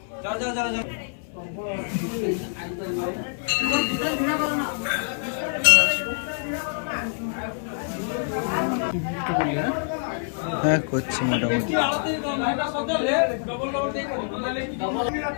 হ্যাঁ করছি মোটামুটি।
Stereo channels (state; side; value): silent; right; 60 dB below the other